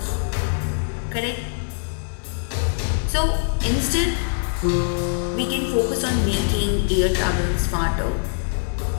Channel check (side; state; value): right; silent; 63 dB below the other